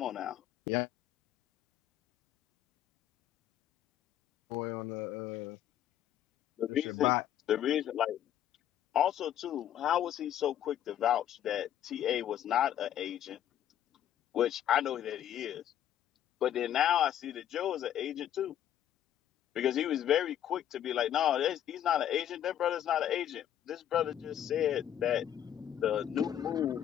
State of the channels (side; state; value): right; quieter; 10.9 dB